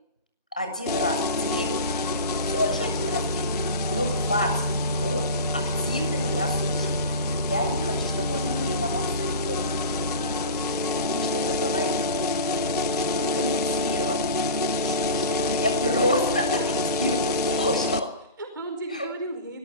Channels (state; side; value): inverted; both; correlation -0.32